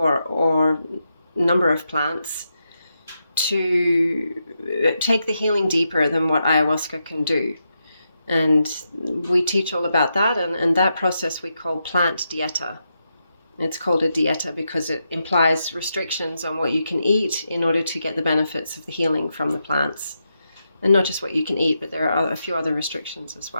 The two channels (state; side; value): inverted; both; correlation -0.85